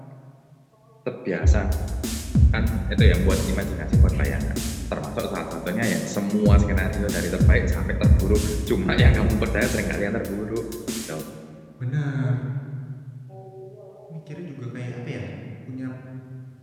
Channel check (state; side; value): identical; both; correlation 1.00